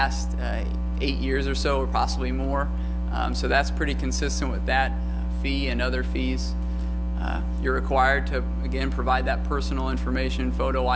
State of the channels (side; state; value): both; identical; correlation 1.00